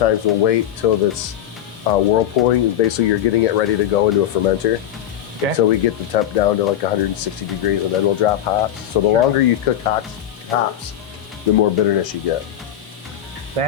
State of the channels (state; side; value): quieter; right; 10.9 dB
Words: we'll wait till this whirlpooling. Basically, you're getting it ready to go into a fermenter. Okay. So we get the temp down to like 160 degrees, and then we'll drop hops. So the longer you cook hops, the more bitterness you get.